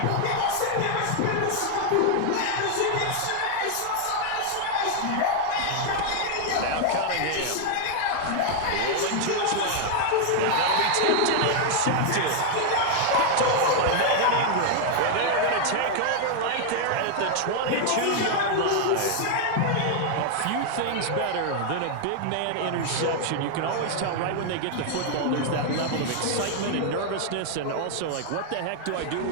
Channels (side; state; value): both; different; correlation 0.00